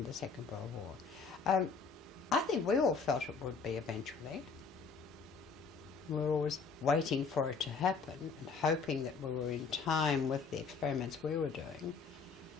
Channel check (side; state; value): right; quieter; 5.1 dB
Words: the Second World War. I think we all felt it would be eventually. We were always waiting for it to happen and hoping that we were in time with the experiments we were doing.